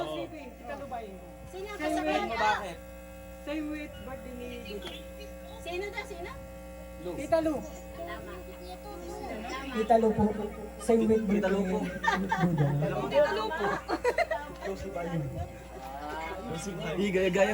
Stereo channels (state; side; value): identical; both; correlation 1.00